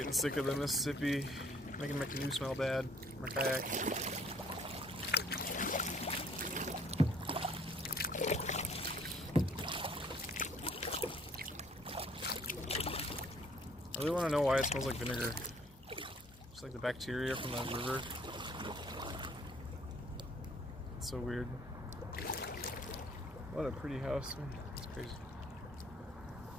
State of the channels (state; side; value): normal; both; correlation 0.59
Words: sick of the Mississippi, making my canoe smell bad, my kayak. I really want to know why it smells like vinegar. Just like the bacteria from the river. It's so weird. What a pretty house. It's crazy.